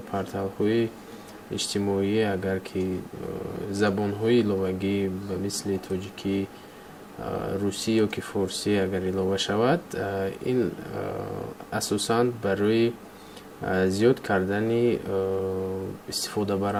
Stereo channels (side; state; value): both; identical; correlation 1.00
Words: پورتال‌های اجتماعی اگر که زبان‌های لغوی به مثل تاجیکی، روسی یا که فارسی اگر علاوه شود، این اساساً برای زیاد کردن استفاده